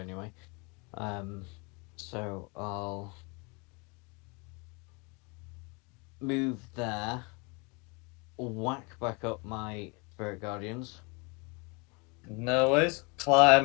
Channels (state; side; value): quieter; right; 30.4 dB